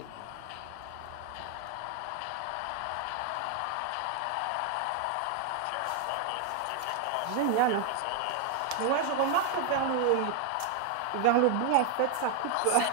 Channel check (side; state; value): both; different; correlation 0.01